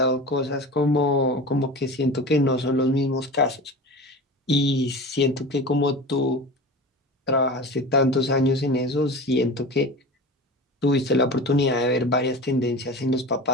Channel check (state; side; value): normal; both; correlation 0.32